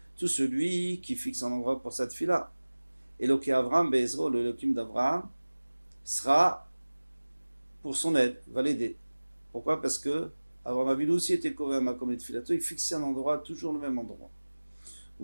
Tout celui qui fixe un endroit pour sa tfila. Eloké Avram, Bezro, le Elohim d'Avram, sera pour son aide, va l'aider. Pourquoi? Parce que Avram Avinu aussi était Kover Makom Letfilato, il fixait un endroit, toujours le même endroit.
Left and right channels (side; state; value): both; inverted; correlation -1.00